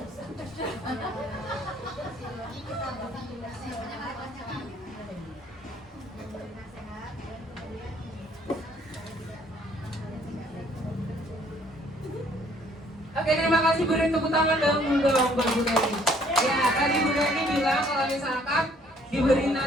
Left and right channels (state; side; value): normal; both; correlation 0.61